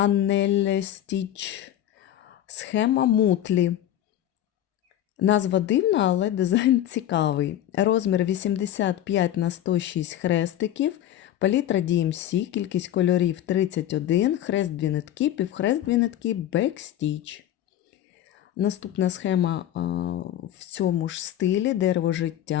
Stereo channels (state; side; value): quieter; right; 12.0 dB